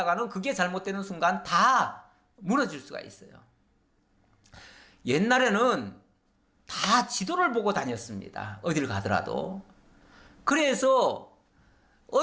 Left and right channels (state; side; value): identical; both; correlation 1.00